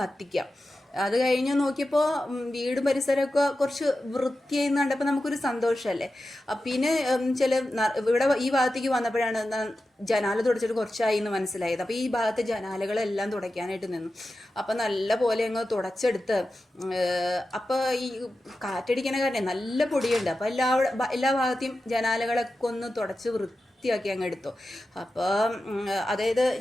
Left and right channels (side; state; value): both; normal; correlation 0.92